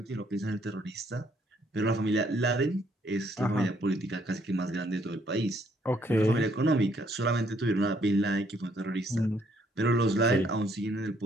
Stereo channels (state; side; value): normal; both; correlation 0.68